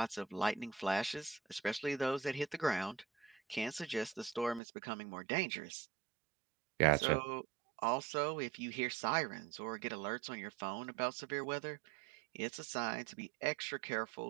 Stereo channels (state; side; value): drops out; left; at 4.6 s